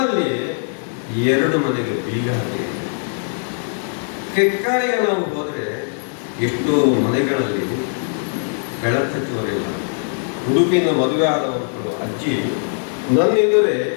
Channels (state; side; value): silent; right; digital silence